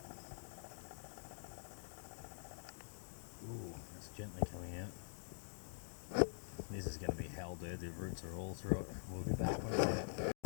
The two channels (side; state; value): right; silent; digital silence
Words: Ooh, it's gently coming out. This is going to be hell, dude. The roots are all through it. We'll be back when it's out.